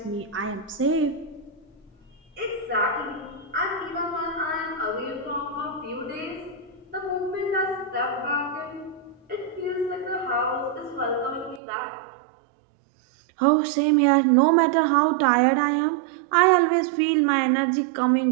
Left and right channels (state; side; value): drops out; left; at 11.6 s